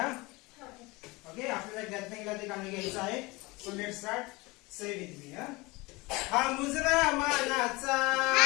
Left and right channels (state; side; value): quieter; right; 23.5 dB